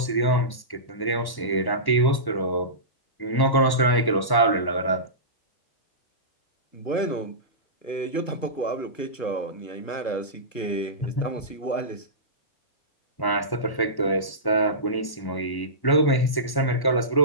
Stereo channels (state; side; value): late; right; 1.1 ms